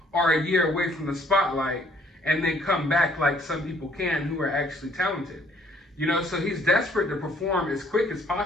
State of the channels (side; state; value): both; normal; correlation 0.62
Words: or a year away from the spotlight and then come back like some people can who are actually talented. So he's desperate to perform as quick as